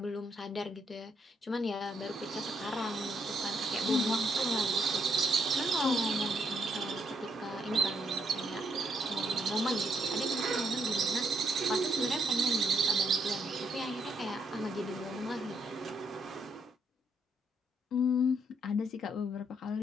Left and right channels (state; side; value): normal; both; correlation 0.74